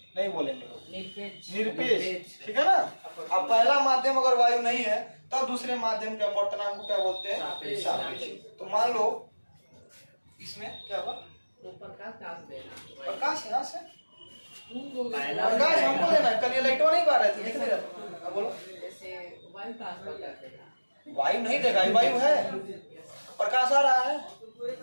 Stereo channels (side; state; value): both; inverted; correlation -1.00